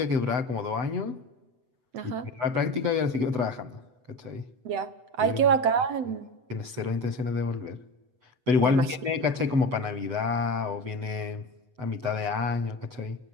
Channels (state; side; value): late; left; 8.0 ms